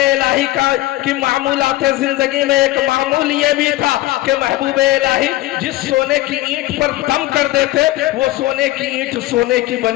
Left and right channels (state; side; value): quieter; right; 16.9 dB